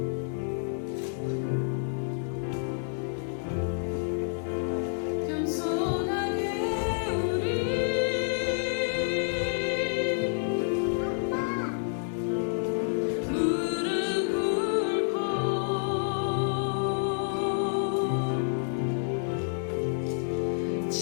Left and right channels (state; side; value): silent; right; digital silence